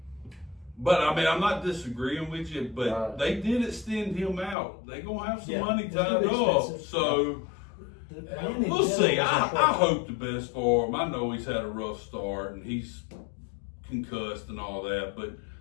But I mean, I'm not disagreeing with you, but Right. they did extend him out. They gonna have some Yeah, money it's tied gonna be up. expensive. So The man in we'll see. general I is impressive. hope the best for him. I know he's had a rough start and he's concussed and all that, but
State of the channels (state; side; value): drops out; right; at 4.5 s